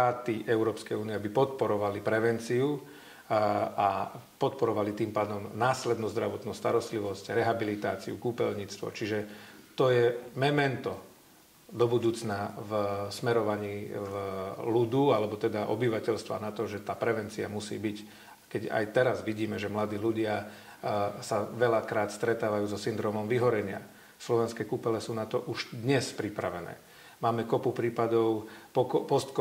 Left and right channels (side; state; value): both; identical; correlation 1.00